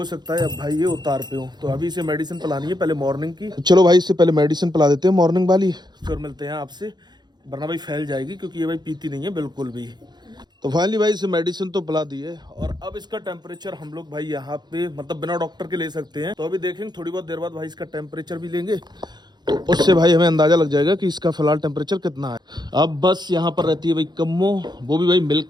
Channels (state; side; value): late; left; 0.21 ms